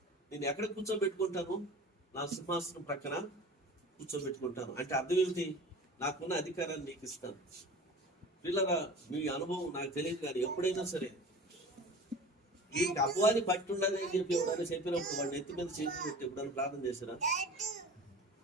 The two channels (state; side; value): normal; both; correlation 0.38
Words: నేను ఎక్కడ కూర్చోబెట్టుకుంటాను? నా సింహాసనం ప్రక్కన కూర్చోబెట్టుకుంటాను. అంటే అర్థం ఏమిటి? నాకున్న అధికారాన్ని నీకు ఇస్తాను. పిల్లరా, మీ అనుభవం నాకు తెలియదు, కానీ ఎప్పుడైనా సరే ఈ అపవాది పట్టి ఉండాలని చెప్పి ఎవరైనా చెప్పినప్పుడు వాడిని ఎత్తి మీద చేతులు పెట్టి ఎప్పుడైనా ప్రార్థన చేశారా?